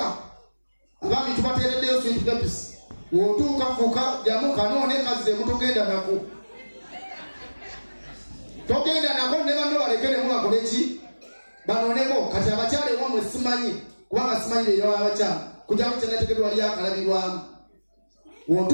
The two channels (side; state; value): both; inverted; correlation -1.00